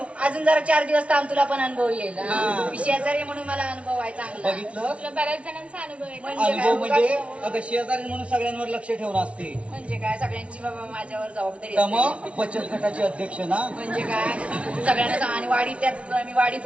अजून जरा 4 दिवस थांब, तुला पण अनुभव येईल. हा. मी शेजारी म्हणून मला अनुभव आहे चांगला. बघितलं, तुला बऱ्याच जणांचा अनुभव आहे. म्हणजे अनुभव काय? म्हणजे अगं शेजारी म्हणून सगळ्यांवर लक्ष ठेवून असते. म्हणजे काय, सगळ्यांची बाबा माझ्यावर जबाबदारी तर असते. मग बचत गटाचे अध्यक्ष ना. म्हणजे काय, सगळ्यांना आणि वाडी त्यात मी वाडी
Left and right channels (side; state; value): left; late; 0.062 ms